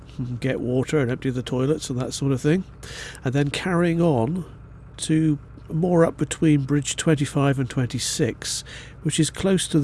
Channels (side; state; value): both; identical; correlation 1.00